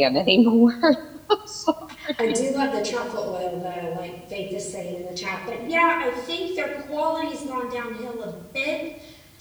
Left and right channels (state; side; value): identical; both; correlation 1.00